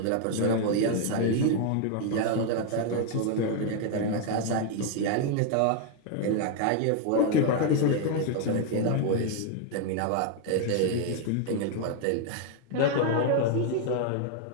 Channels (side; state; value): both; different; correlation 0.00